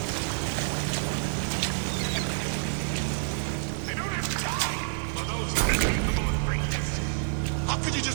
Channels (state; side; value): silent; left; digital silence